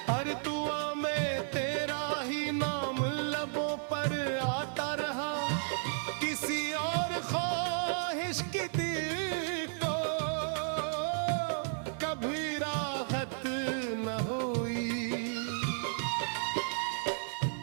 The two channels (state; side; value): silent; left; digital silence